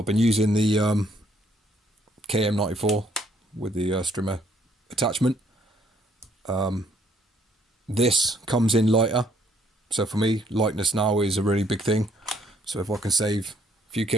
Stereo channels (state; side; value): normal; both; correlation 0.66